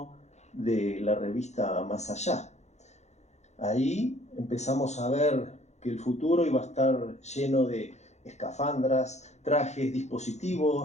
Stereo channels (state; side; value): late; right; 0.33 ms